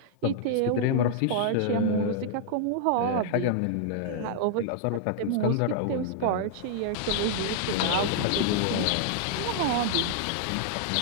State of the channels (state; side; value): different; both; correlation -0.01